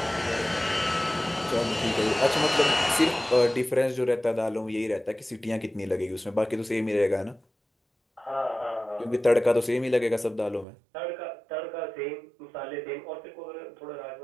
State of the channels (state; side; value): drops out; left; at 10.7 s